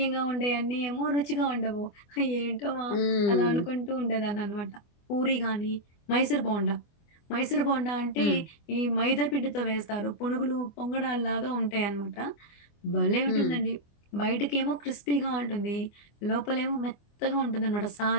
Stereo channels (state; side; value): late; right; 24 ms